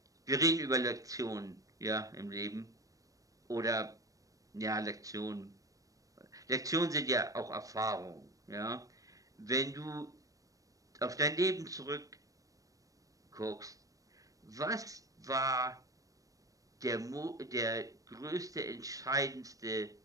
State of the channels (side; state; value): left; late; 0.16 ms